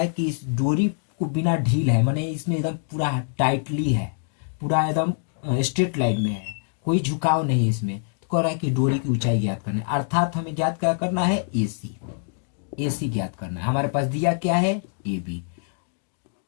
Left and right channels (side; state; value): right; silent; digital silence